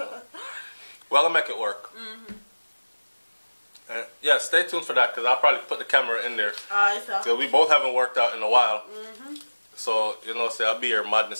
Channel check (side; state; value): both; inverted; correlation -1.00